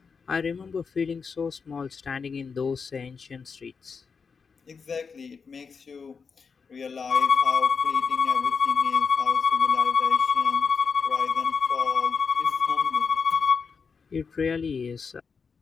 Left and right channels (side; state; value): right; quieter; 5.5 dB